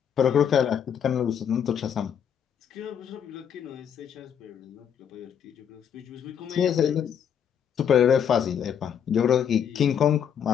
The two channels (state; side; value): quieter; right; 8.3 dB